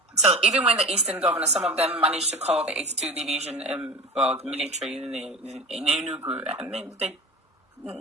So even when the Eastern governors, some of them managed to call the 82 Division, the military in Enugu, and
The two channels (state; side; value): normal; both; correlation 0.33